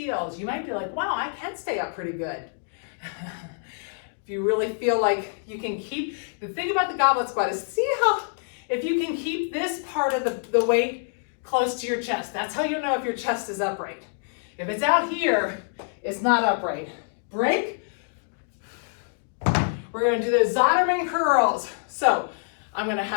You might be like, wow, I can stay up pretty good. If you really feel like you can keep, the thing about the goblet squat is see how, if you can keep this part of the weight close to your chest. That's how you know if your chest is upright. If it's out here, it's not upright. Break. We're going to do those Ottoman curls. So I'm going to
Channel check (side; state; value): right; silent; digital silence